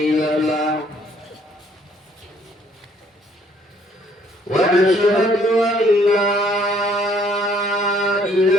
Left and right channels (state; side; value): normal; both; correlation 0.63